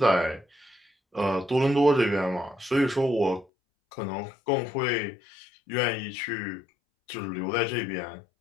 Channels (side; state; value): right; drops out; at 3.5 s